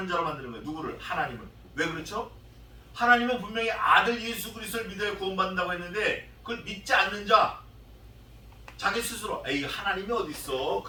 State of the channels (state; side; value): identical; both; correlation 1.00